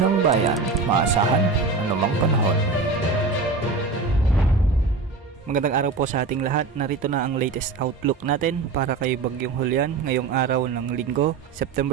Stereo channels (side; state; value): left; quieter; 4.2 dB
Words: bayan, maasahan anumang panahon. Magandang araw po sa ating lahat. Narito na ang latest outlook natin para kay Bagyong Julian ngayong araw ng Linggo,